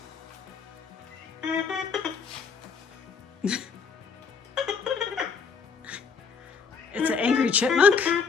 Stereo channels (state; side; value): quieter; right; 5.6 dB